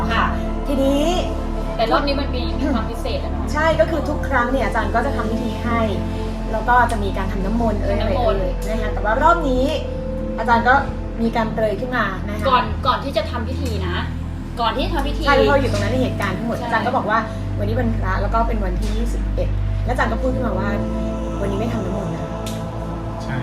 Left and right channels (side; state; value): both; identical; correlation 1.00